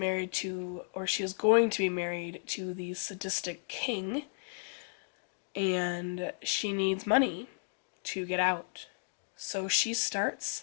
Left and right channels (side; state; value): right; silent; 55 dB below the other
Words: to, or she is going to be married to, the sadistic king, and she needs money to get out. So she